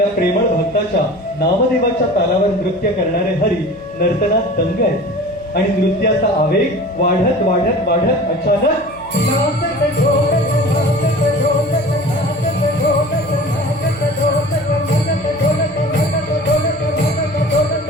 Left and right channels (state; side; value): noise; left; hum, 23 dB below the sound